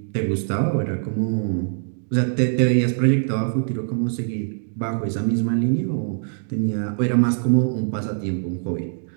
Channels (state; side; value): silent; left; 64 dB below the other